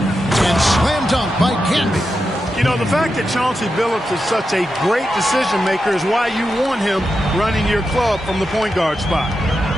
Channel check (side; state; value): both; normal; correlation 0.88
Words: slam dunk by Camby. You know, the fact that Chauncey Billups is such a great decision maker is why you want him running your club from the point guard spot.